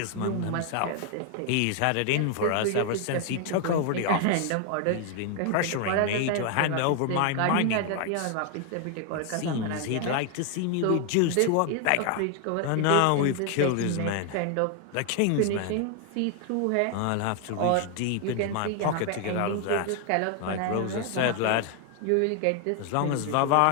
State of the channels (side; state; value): both; different; correlation 0.00